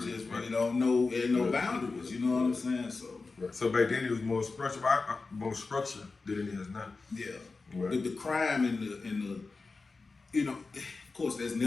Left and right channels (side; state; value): right; quieter; 4.0 dB